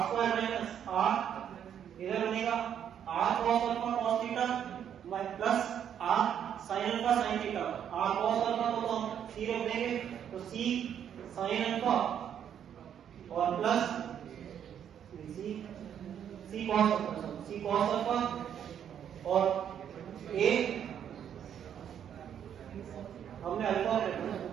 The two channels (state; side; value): quieter; left; 9.1 dB